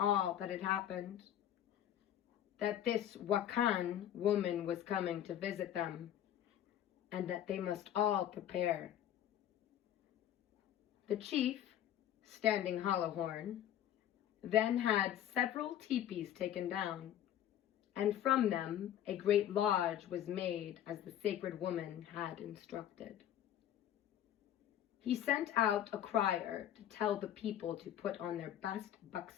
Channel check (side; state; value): right; quieter; 11.1 dB